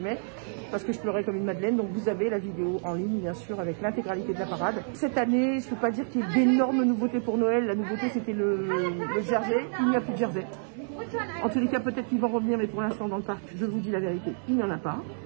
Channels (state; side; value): silent; left; 59 dB below the other